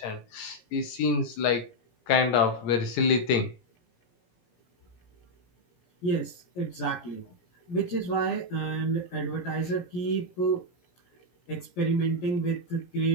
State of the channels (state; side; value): late; right; 17 ms